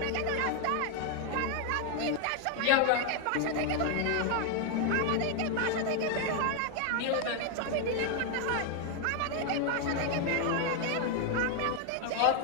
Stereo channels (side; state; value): both; different; correlation 0.01